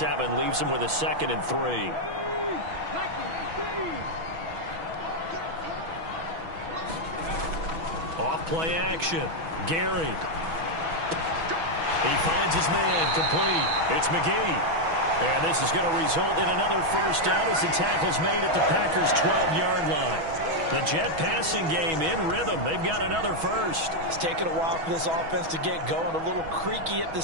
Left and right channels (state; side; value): late; left; 6.2 ms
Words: leaves him with a 2nd and 3. Off-play action. Gary. He finds his man complete. It's McGee. And this is going to result in another first down as the tackle's made at the Packers' 12-yard line. The Jet passing game in rhythm. They've got another first. It's taken a while for this offense to get going. A little creaky at the